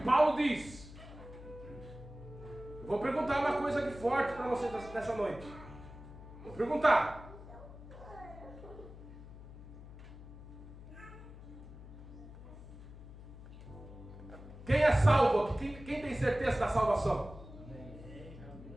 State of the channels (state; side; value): noise; left; hum, 15 dB below the sound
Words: diz. Eu vou perguntar uma coisa aqui forte para vocês nessa noite. Vou perguntar. Quem é salvo aqui? Quem tem certeza da salvação?